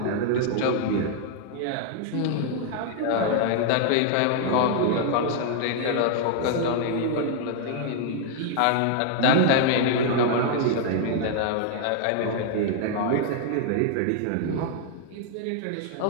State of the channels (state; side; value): different; both; correlation 0.00